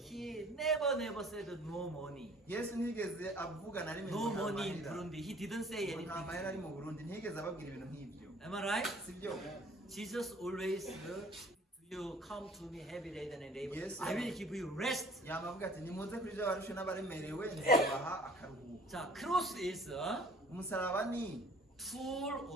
never said no money. yesu ntiyigeze avuga na rimwe No ngo nta money in mahera. Burundi. He didn't say Ngo nta anything. mahera ari mu burundi ntiyigeze ababwira ibintu nk'ibyo Am I right? sibyo Jesus always you come to me heavy laden and labor. Yes, I sir. will give you rest. yama avuga ati nimuze kuri ibyo barushe n'abaremerewe nzabaha akaruhuko 자, cross is a umusaraba ni tool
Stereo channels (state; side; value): normal; both; correlation 0.53